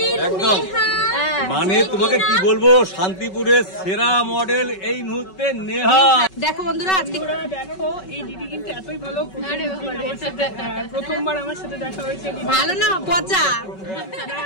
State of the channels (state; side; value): late; right; 5.3 ms